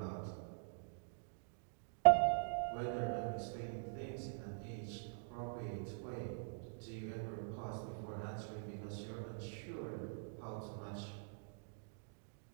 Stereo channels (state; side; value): silent; left; digital silence